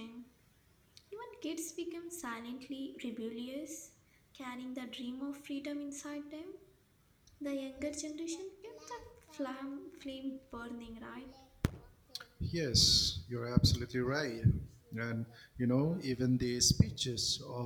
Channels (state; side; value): identical; both; correlation 1.00